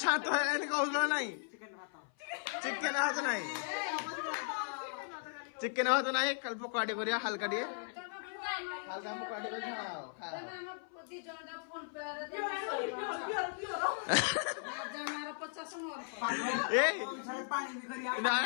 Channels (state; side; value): silent; right; 53 dB below the other